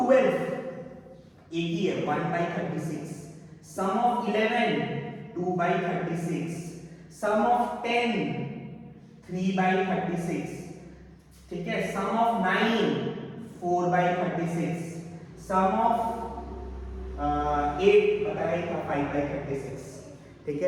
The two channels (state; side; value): identical; both; correlation 1.00